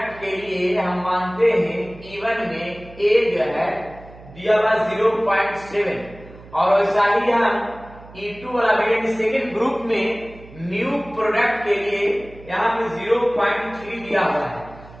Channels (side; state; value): right; noise; hum, 20 dB below the sound